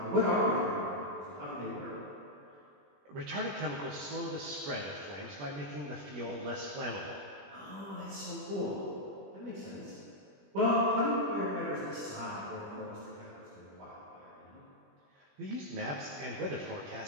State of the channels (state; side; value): late; left; 21 ms